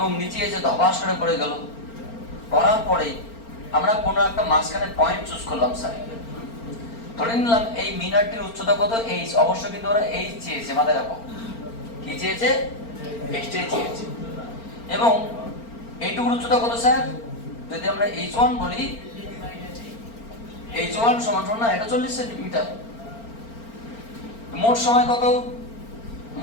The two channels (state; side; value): late; right; 4.4 ms